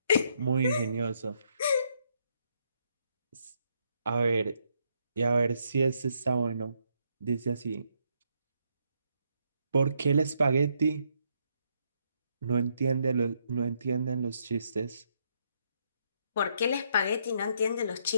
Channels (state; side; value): inverted; both; correlation -0.75